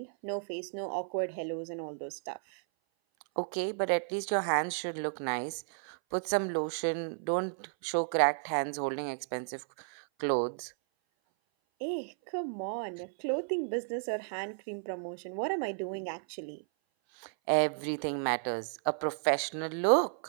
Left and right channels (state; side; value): silent; left; 56 dB below the other